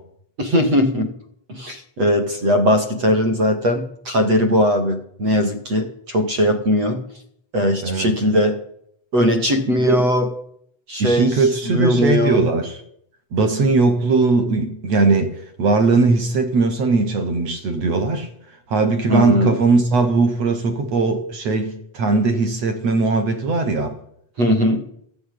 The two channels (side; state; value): left; late; 8.1 ms